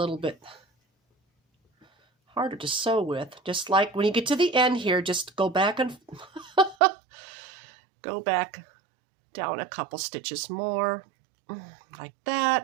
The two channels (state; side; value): drops out; left; at 6.8 s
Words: bit harder to sew with. Just like when you get to the end here, just go back and go back down a couple stitches more, like